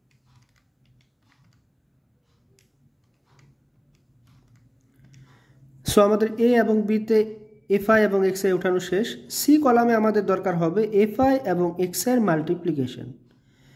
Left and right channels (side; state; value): both; identical; correlation 1.00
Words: সো আমাদের এ এবং বিতে এফআই এবং এক্স আই উঠানো শেষ। সি কলামে আমাদের দরকার হবে এফআই এবং এক্স এর মাল্টিপ্লিকেশন।